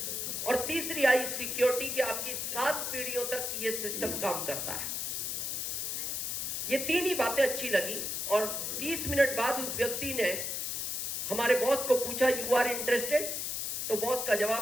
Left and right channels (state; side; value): noise; left; hiss, 2 dB below the sound